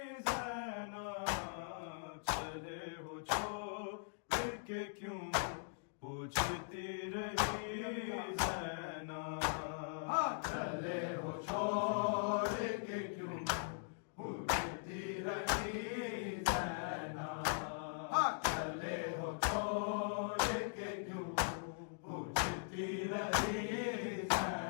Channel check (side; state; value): right; silent; digital silence